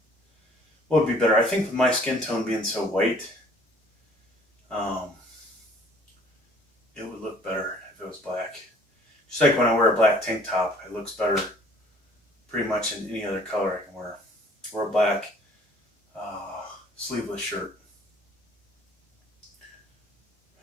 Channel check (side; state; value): both; normal; correlation 0.55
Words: would be better. I think with my skin tone being so white, it would look better if it was black. Just like when I wear a black tank top, it looks better pretty much in any other color I can wear. Or a black sleeveless shirt.